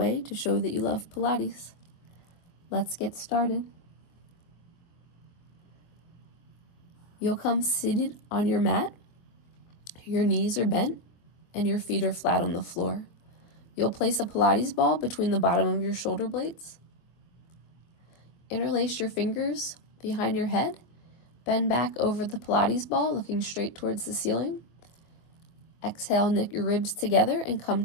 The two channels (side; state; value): right; late; 24 ms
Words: to show that you love Pilates. Let's get started. You'll come seated on your mat. Your knees are bent and your feet are flat on the floor. You'll place a Pilates ball between the bottom of your shoulder blades. Interlace your fingers behind your head. Bend back over the Pilates ball, looking straight towards the ceiling. Exhale, knit your ribs together and come